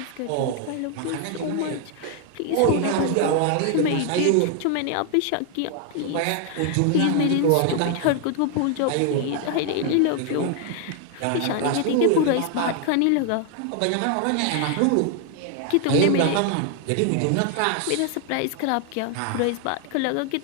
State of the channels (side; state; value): both; different; correlation 0.00